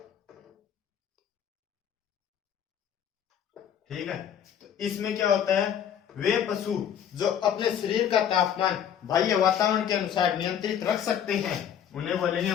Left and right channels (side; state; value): right; quieter; 9.1 dB